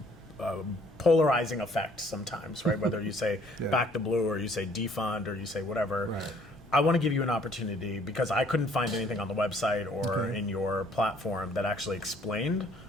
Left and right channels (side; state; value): left; noise; rumble, 26 dB below the sound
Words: polarizing effect sometimes, right? Whether you say Back the Blue or you say defund or you say whatever. Right. I want to give you an opportunity because I couldn't find anything on the website or in your platform that actually explained